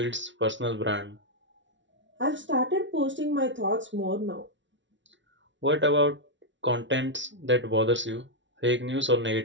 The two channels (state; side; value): late; left; 0.54 ms